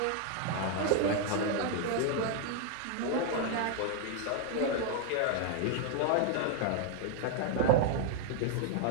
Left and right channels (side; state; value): both; different; correlation 0.00